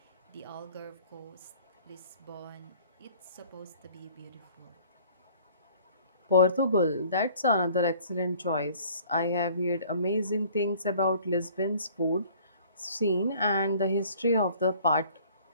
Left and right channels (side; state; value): both; inverted; correlation -0.53